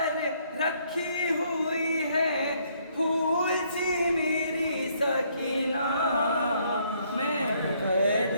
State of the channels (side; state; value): both; inverted; correlation -0.68